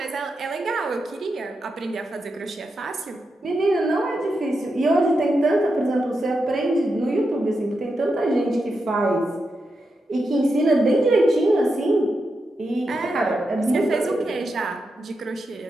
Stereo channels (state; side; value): normal; both; correlation 0.87